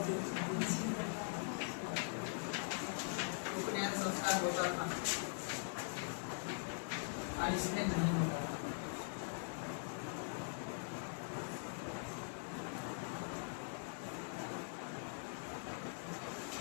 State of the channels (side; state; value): right; silent; digital silence